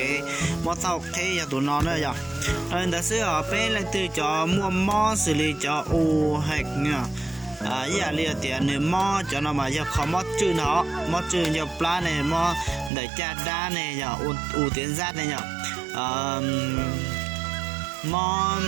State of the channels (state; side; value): drops out; left; at 12.9 s